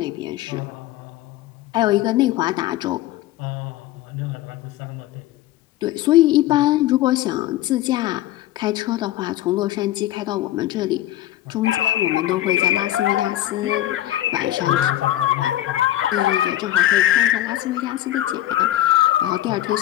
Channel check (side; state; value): right; quieter; 14.3 dB